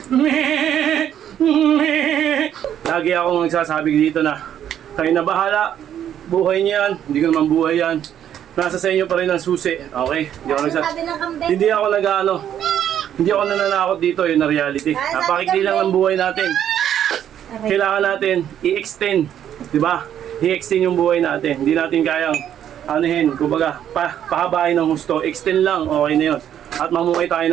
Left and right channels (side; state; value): left; quieter; 10.1 dB